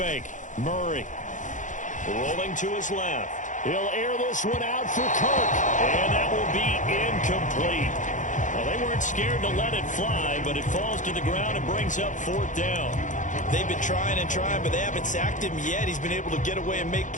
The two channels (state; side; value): late; right; 0.37 ms